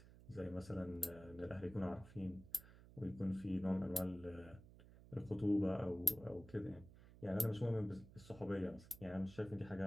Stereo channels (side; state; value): right; noise; hum, 19 dB below the sound